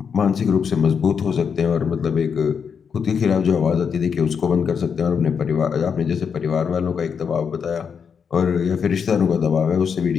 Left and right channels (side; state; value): right; quieter; 6.6 dB